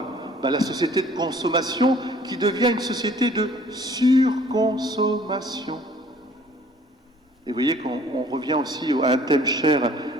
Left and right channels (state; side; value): normal; both; correlation 0.55